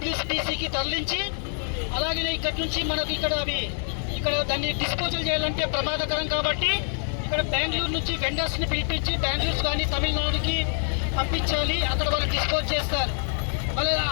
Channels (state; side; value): silent; right; 56 dB below the other